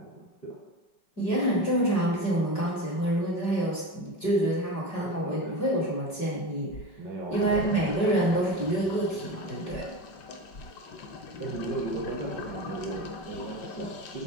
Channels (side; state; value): right; late; 5.3 ms